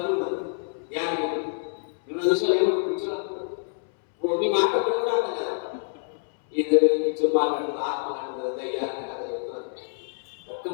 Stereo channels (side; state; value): right; silent; 61 dB below the other